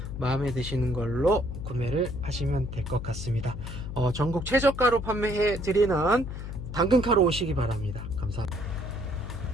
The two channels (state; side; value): noise; left; hum, 8 dB below the sound